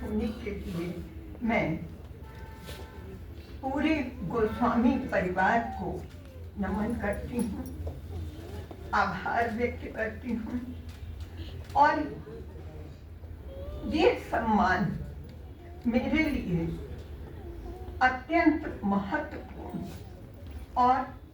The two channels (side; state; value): both; identical; correlation 1.00